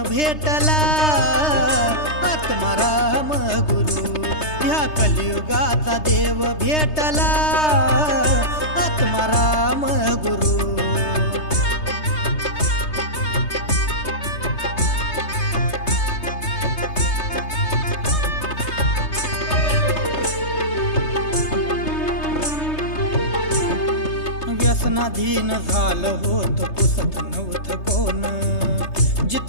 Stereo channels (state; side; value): late; right; 3.3 ms